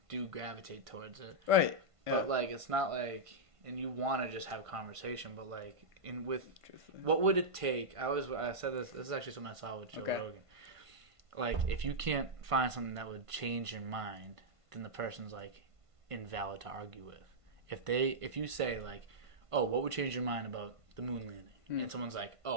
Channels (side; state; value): left; late; 1.5 ms